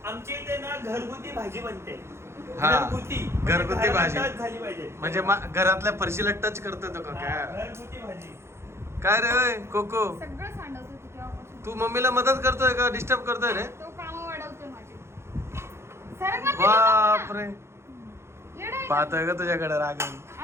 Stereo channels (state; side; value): late; left; 0.13 ms